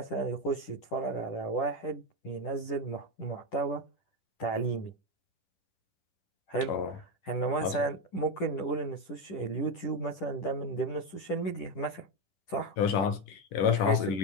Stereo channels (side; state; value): right; late; 10 ms